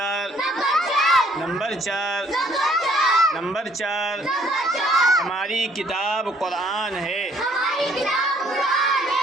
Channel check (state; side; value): normal; both; correlation 0.63